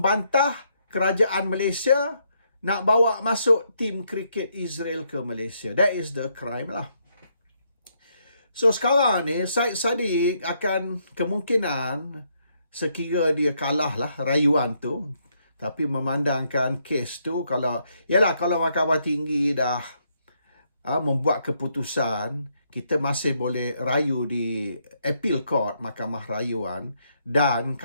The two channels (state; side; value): inverted; both; correlation -0.75